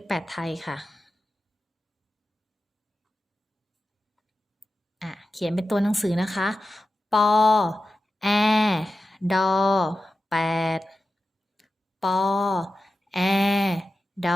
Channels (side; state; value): both; normal; correlation 0.93